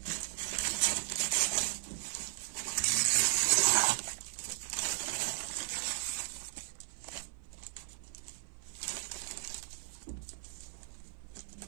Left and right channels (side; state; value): left; silent; 54 dB below the other